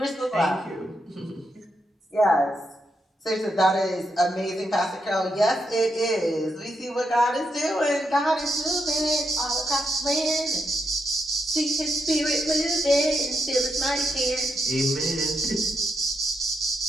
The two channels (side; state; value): both; normal; correlation 0.81